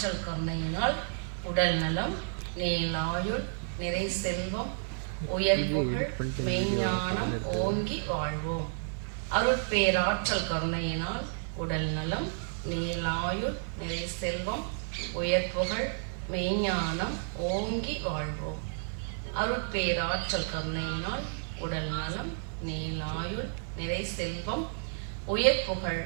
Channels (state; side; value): silent; left; digital silence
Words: கருணையினால் உடல் நலம், நீலாயுள், நிறை செல்வம், உயர்வுகள், மெய்ஞானம் ஓங்கி வாழ்வோம். அருட்பேராற்றல் கருணையினால் உடல் நலம், நீலாயுள், நிறை செல்வம், உயர்வுகள், மெய்ஞானம் ஓங்கி வாழ்வோம். அருட்பேராற்றல் கருணையினால் உடல் நலம், நீலாயுள், நிறை செல்வம், உயர்வுகள்,